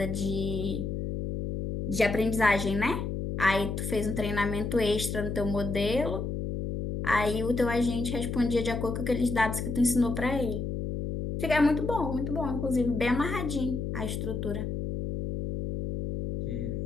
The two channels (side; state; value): left; noise; hum, 3 dB below the sound